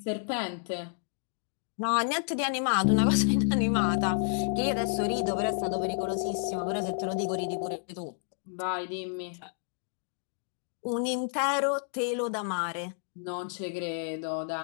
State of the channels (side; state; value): right; silent; digital silence